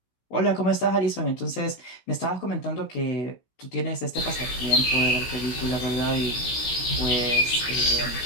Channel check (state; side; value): late; right; 16 ms